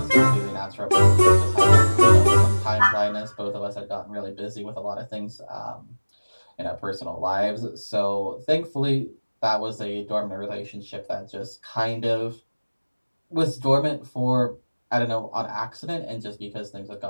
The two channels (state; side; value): inverted; both; correlation -1.00